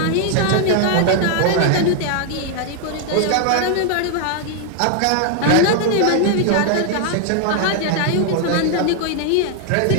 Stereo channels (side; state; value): both; different; correlation 0.00